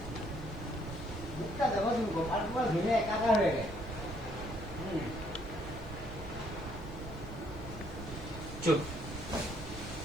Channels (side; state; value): both; normal; correlation 0.67